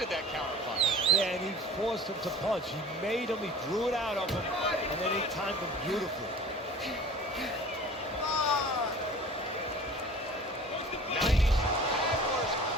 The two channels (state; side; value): normal; both; correlation 0.44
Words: that counter punch. Yeah, and he forced him to punch. He made him, he drew it out of him, and then he timed him beautifully. 90 Hagler's